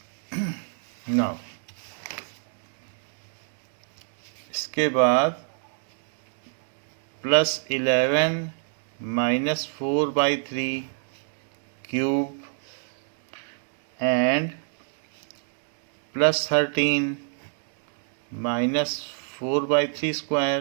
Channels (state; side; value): silent; left; digital silence